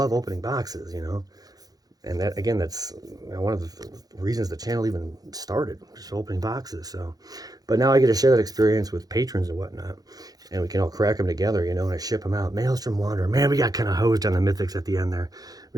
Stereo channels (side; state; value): left; late; 0.18 ms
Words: opening boxes, you know. And that, again, that's one of the reasons the channel even started, just opening boxes. So, but now I get to share that experience with patrons and whatnot, and we can all crack them together, you know, and I ship them out. Maelstrom Wanderer. Man, we got kind of hosed on the mythics at the end there.